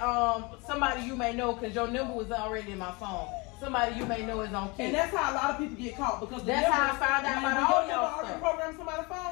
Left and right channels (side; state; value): right; quieter; 27.3 dB